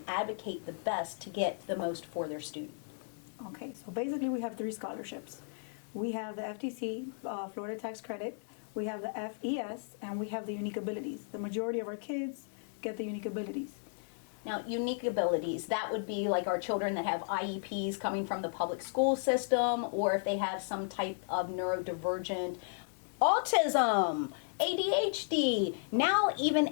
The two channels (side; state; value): right; silent; digital silence